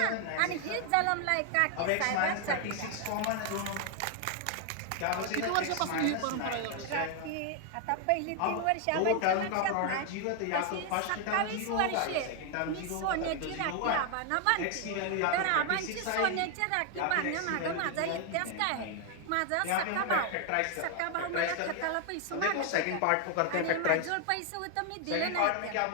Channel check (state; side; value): different; both; correlation 0.00